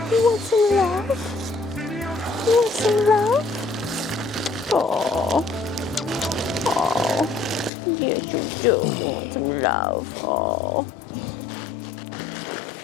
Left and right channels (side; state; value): right; drops out; at 7.7 s